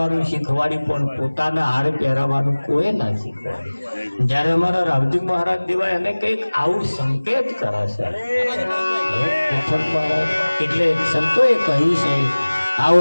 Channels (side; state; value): both; inverted; correlation -1.00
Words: શીખવાડી પણ પોતાના હાર પહેરાવાનું કોઈ ના શીખવાડી. જયારે અમારા રાવજી મહારાજ દેવા એને કંઈક આવું સંકેત કરે છે. એટલે સંતોએ કહ્યું છે આવો